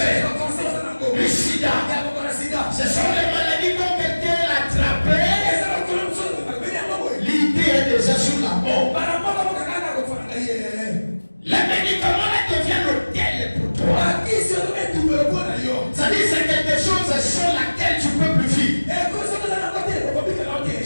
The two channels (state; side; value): inverted; both; correlation -1.00